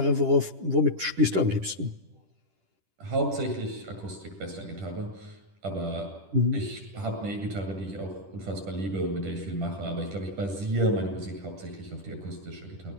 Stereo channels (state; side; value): late; left; 10 ms